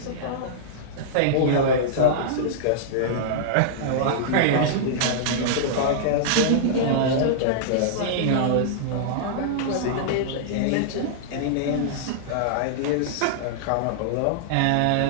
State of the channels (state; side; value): different; both; correlation -0.02